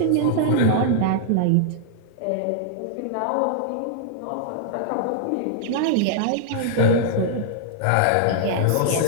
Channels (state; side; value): different; both; correlation -0.01